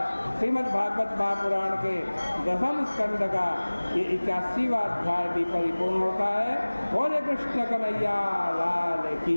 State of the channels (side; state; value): both; inverted; correlation -1.00